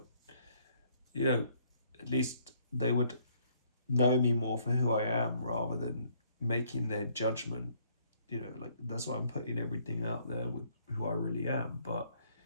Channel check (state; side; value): inverted; both; correlation -0.65